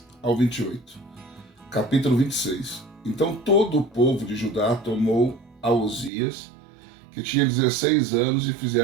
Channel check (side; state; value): left; drops out; at 6.1 s